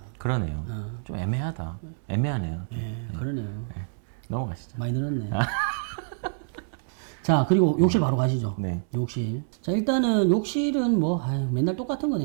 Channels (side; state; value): left; silent; digital silence